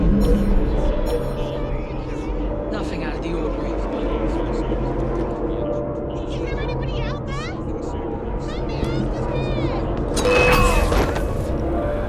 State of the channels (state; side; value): identical; both; correlation 1.00